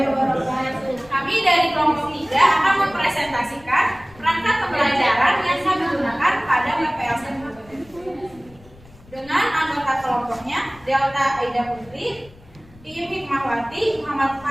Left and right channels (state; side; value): noise; left; rumble, 24 dB below the sound